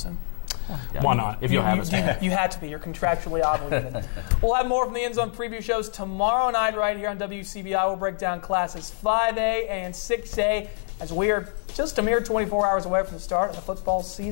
Yeah. Why not? If you'll have us. You had to be. You're contractually obligated. We'll have more from the End Zone Preview Shows tomorrow night right here on WCBI. We'll break down classes 5A and 6A as we are just a mere 24 hours away from the start of the football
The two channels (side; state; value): right; silent; 61 dB below the other